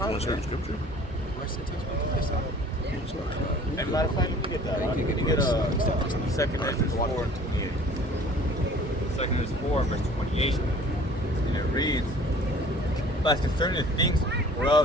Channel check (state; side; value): normal; both; correlation 0.49